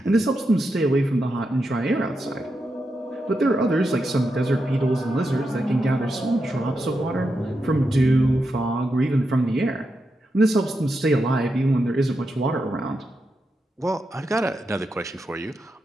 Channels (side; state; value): both; normal; correlation 0.86